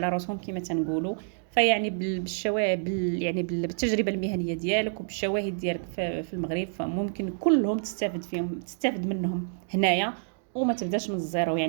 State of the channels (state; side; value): silent; left; digital silence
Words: راسهم كما تنقولوا. فيعني بالشواهد يعني بالتجربه المهنيه ديالك وبالشواهد ديالك في المغرب، فممكن كلهم تستافد منهم هنايا وما تبداش من الزيرو.